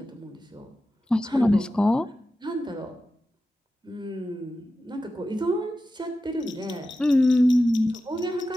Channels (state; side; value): normal; both; correlation 0.93